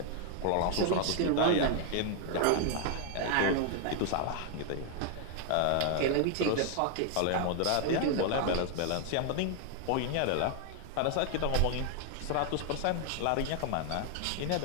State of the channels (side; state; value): both; different; correlation 0.00